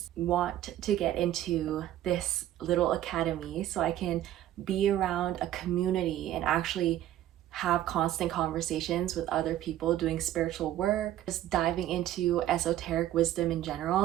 Want to get into this little academy so I can be around a community and actually have constant conversations with other people doing spiritual work, just diving into esoteric wisdom in general.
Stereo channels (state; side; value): quieter; left; 12.8 dB